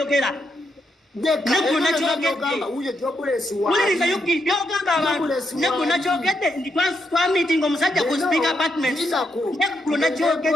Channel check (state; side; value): normal; both; correlation 0.80